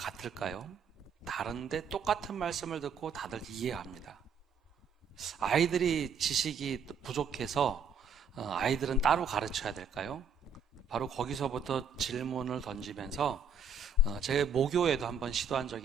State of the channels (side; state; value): left; quieter; 4.5 dB